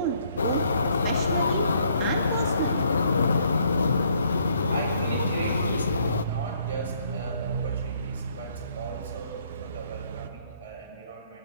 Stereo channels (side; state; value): both; inverted; correlation -0.67